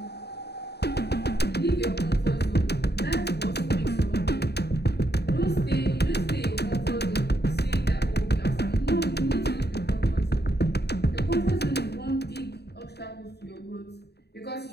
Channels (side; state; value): right; late; 0.48 ms